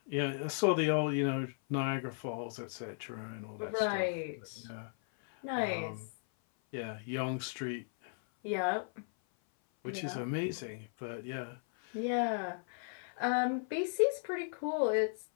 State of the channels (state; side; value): silent; right; 54 dB below the other